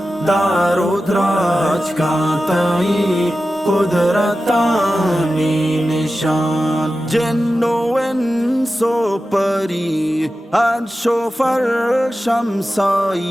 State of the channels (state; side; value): normal; both; correlation 0.93